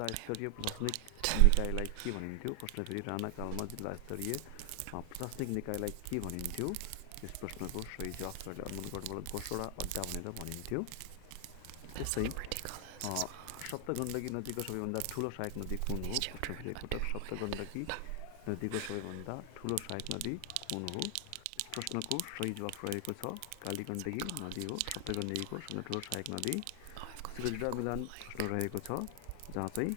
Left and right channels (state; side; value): different; both; correlation 0.00